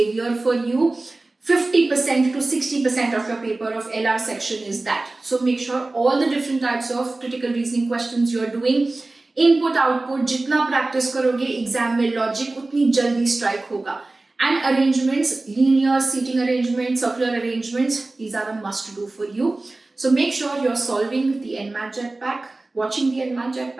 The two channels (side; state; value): left; quieter; 3.1 dB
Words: for you. 50% to 60% of your paper of LR section is that. So make sure all the different types of critical reasoning questions you are doing. Input, output, जितना practice करोगे exam में logic उतनी जल्दी strike होगा. And arrangements, linear seating arrangements, circular arrangements, these are a must do for you. So make sure you're solving the NMAT Jetpack, watching the NMAT